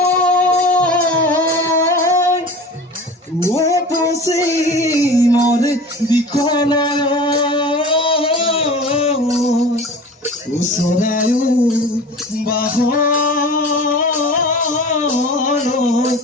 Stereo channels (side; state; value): both; normal; correlation 0.38